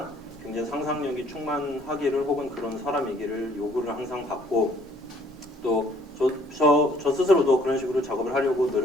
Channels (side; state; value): both; normal; correlation 0.61